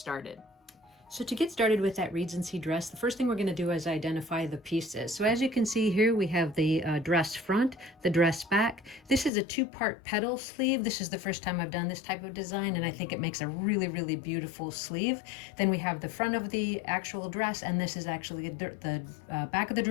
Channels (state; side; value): drops out; right; at 9.3 s